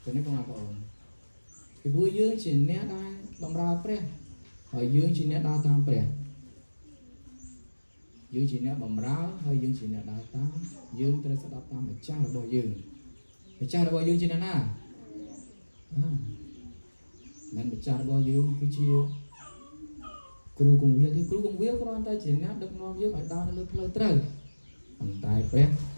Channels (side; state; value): both; inverted; correlation -1.00